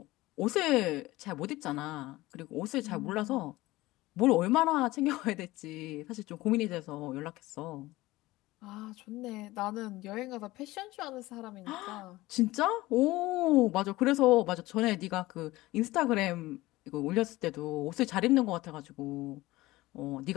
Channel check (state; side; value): quieter; right; 18.8 dB